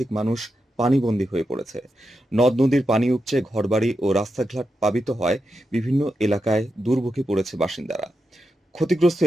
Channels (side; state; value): both; normal; correlation 0.87